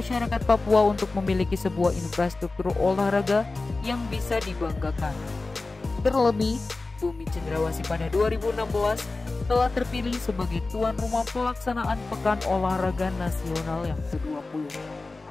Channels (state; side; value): quieter; right; 3.5 dB